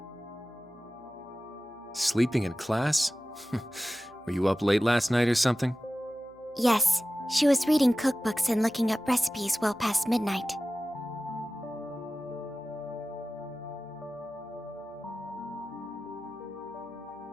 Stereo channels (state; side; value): noise; right; hum, 29 dB below the sound